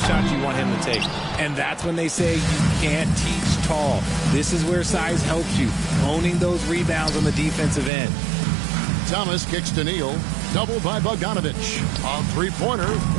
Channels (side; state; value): left; drops out; at 7.9 s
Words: you want him to take. And that's when they say you can't teach tall. This is where size helps you. Owning those rebounds on the defensive end. Thomas kicks to Neal. Doubled by Bogdanovich. On three-pointer,